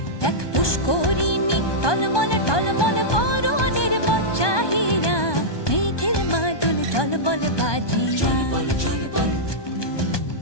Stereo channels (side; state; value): right; late; 1.2 ms